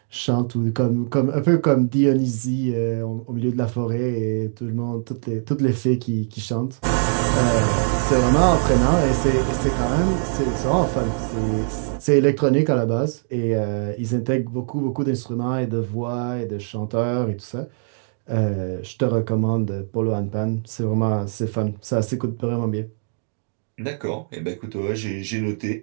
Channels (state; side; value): silent; left; digital silence